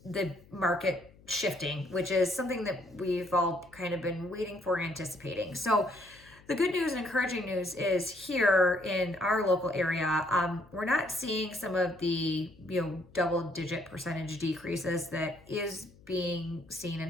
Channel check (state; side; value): noise; left; hum, 26 dB below the sound